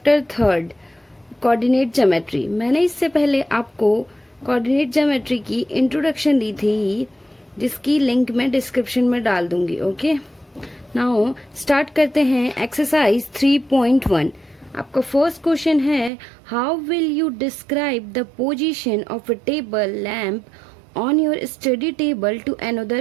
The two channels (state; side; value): drops out; left; at 16.1 s